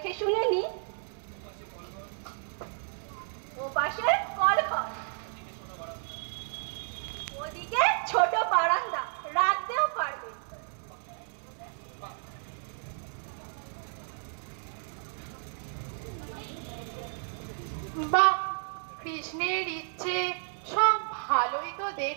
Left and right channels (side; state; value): left; silent; 56 dB below the other